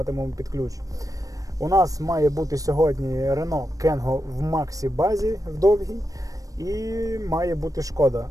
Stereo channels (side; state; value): left; late; 0.16 ms